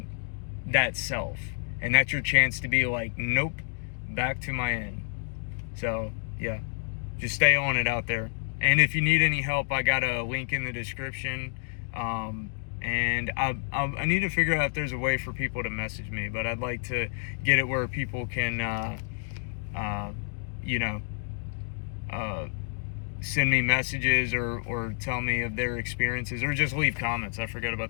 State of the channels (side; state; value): right; silent; digital silence